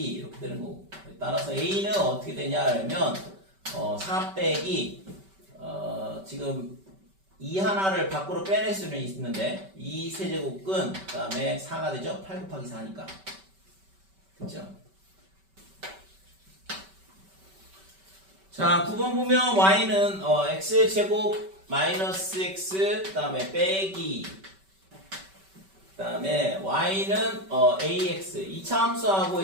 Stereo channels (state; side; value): late; left; 5.2 ms